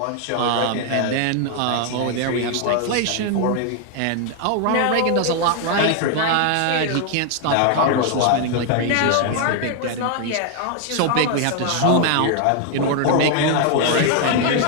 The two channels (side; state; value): both; different; correlation 0.00